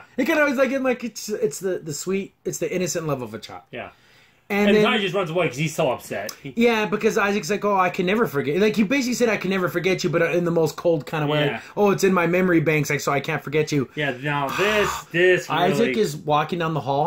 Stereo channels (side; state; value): both; identical; correlation 1.00